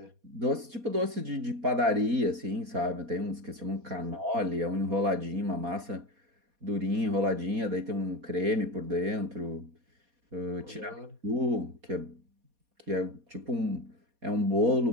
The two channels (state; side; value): late; left; 4.2 ms